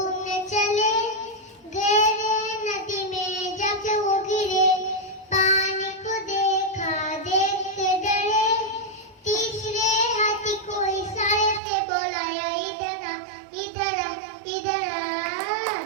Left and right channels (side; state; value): left; drops out; at 11.6 s